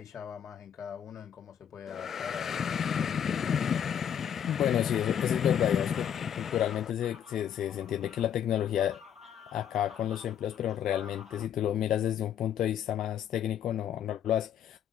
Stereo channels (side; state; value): right; quieter; 9.2 dB